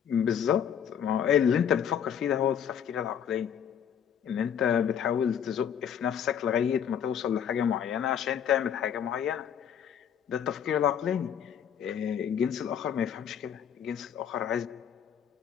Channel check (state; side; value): quieter; right; 8.5 dB